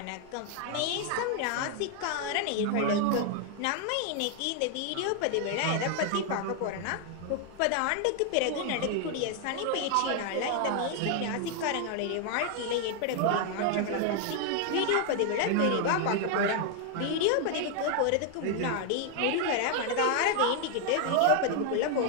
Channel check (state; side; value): different; both; correlation 0.00